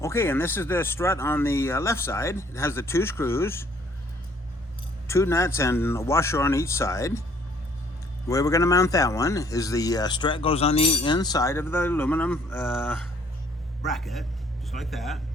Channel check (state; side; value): normal; both; correlation 0.61